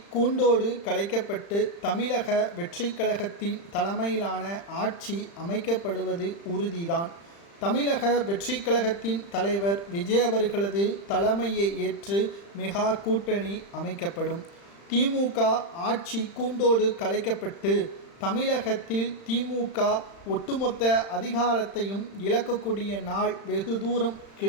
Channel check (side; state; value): right; late; 35 ms